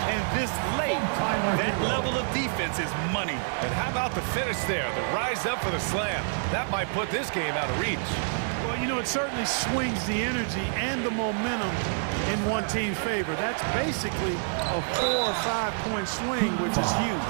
and this late, that level of defense is money. And how about the finish there? The rise up for the slam. That might put this game out of reach. Well, you know, it certainly swings the energy and the momentum in one team's favor. That's basically a 4 or 5 point swing, which is huge.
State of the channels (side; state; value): left; silent; 60 dB below the other